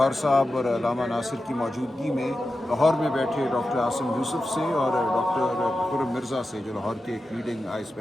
صاحب اور علامہ ناصر کی موجودگی میں لاہور میں بیٹھے ڈاکٹر عاصم یوسف سے اور ڈاکٹر خرم مرزا سے جو لاہور کے ایک لیڈنگ آئی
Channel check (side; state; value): both; normal; correlation 0.92